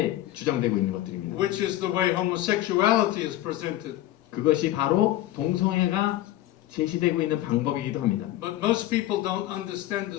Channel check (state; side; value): quieter; right; 14.5 dB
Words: 주장되고 있는 것들입니다. Which is the way homosexuality is presented. 그것이 바로 동성애가 제시되고 있는 방법이기도 합니다. But most people don't understand the